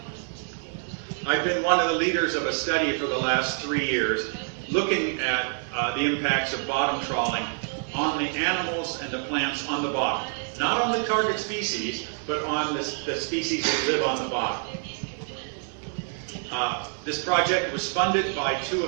I've been one of the leaders of a study for the last 3 years looking at the impacts of bottom trawling on the animals and the plants on the bottom. Not on the target species, but on the species that live on the bottom. This project was funded by 2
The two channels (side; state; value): left; silent; 56 dB below the other